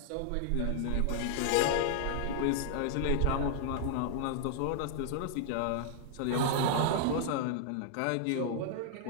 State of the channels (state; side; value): different; both; correlation -0.01